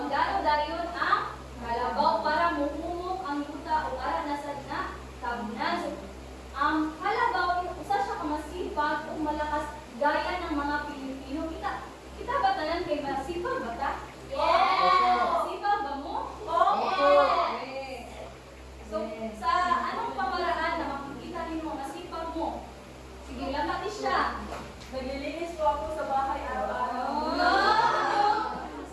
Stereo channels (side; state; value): both; identical; correlation 1.00